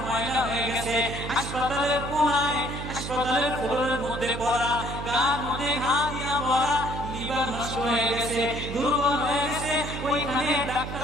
ময়লা হয়ে গেছে, হাসপাতালের কোণায় হাসপাতালের ফ্লোরের মধ্যে পড়া, গার মধ্যে ঘা দিয়া ভরা, লিভার নষ্ট হয়ে গেছে, দুর্বল হয়ে গেছে, ওইখানে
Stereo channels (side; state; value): right; noise; hum, 7 dB below the sound